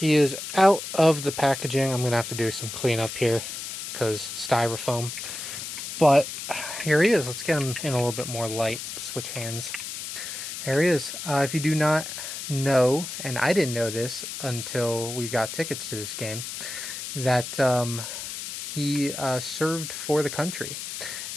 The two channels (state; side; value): noise; left; hiss, 7 dB below the sound